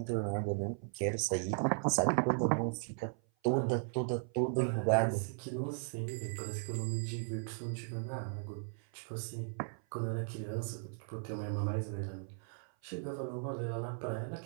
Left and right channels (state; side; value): silent; left; 53 dB below the other